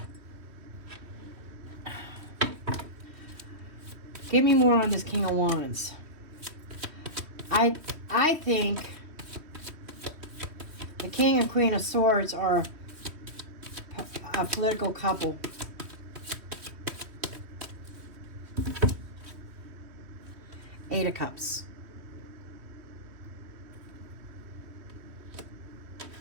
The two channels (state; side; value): late; left; 3.1 ms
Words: Give me more on this King of Wands. I think the King and Queen of Swords are a political couple. Eight of Cups.